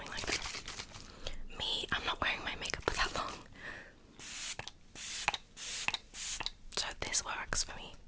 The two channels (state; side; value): identical; both; correlation 1.00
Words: like that. Me, I'm not wearing my makeup for that long. So this works for me.